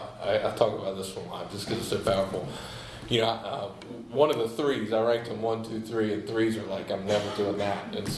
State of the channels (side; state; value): both; identical; correlation 1.00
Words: talk about this one a lot just because it's so powerful. One of the 3s, I ranked them 1, 2, 3, and 3s are like, I'm never doing that. And